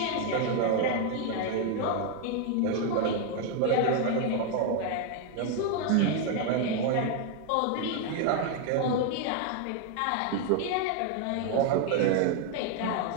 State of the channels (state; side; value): different; both; correlation 0.01